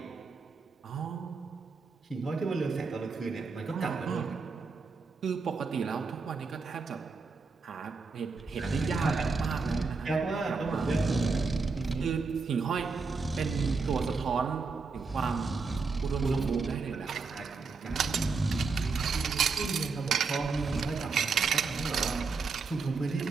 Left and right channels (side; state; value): left; quieter; 4.5 dB